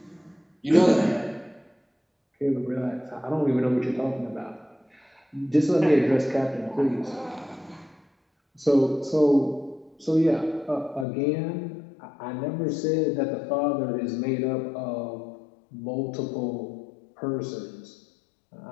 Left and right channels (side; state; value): right; drops out; at 11.1 s